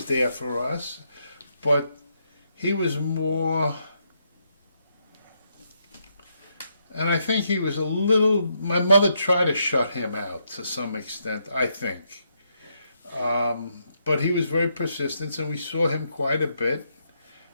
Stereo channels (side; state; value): both; inverted; correlation -0.78